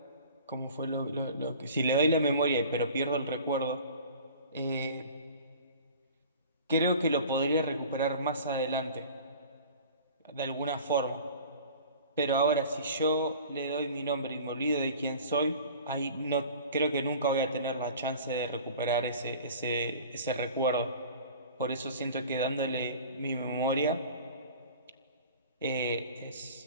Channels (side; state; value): both; inverted; correlation -0.43